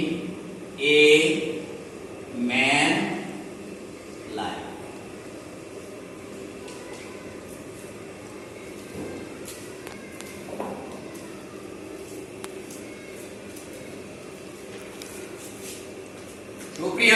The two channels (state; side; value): identical; both; correlation 1.00